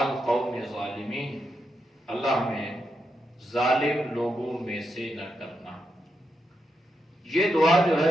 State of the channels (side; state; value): both; normal; correlation 0.85